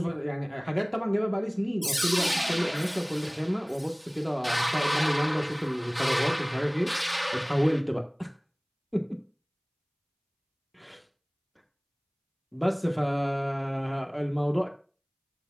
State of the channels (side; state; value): both; identical; correlation 1.00